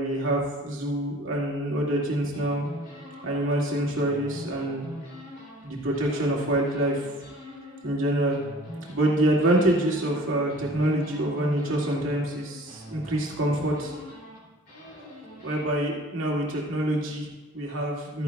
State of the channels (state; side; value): normal; both; correlation 0.48